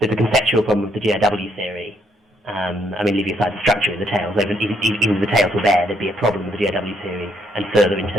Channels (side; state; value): both; normal; correlation 0.72